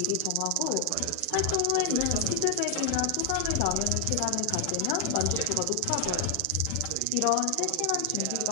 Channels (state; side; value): different; both; correlation 0.00